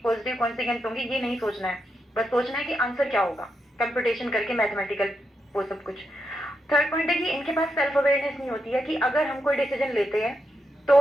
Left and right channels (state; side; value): normal; both; correlation 0.84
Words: पॉजिटिव कॉन्सिक्वेंस होंगे, ये नहीं सोचना है. बस सोचना है कि आंसर क्या होगा, कंप्यूटेशन करके मैथमेटिकल वो सब कुछ. थर्ड पॉइंट है कि इनके पास सेल्फ अवेयरनेस नहीं होती है कि अगर हम कोई डिसीजन लेते हैं तो,